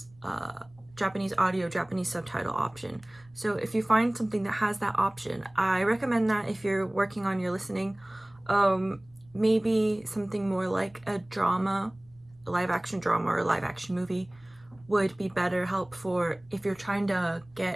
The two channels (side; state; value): right; noise; rumble, 28 dB below the sound